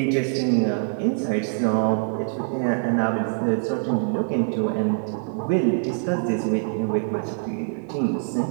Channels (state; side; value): silent; left; digital silence